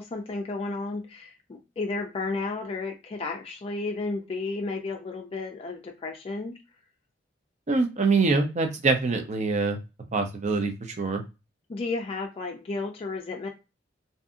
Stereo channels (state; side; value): normal; both; correlation 0.52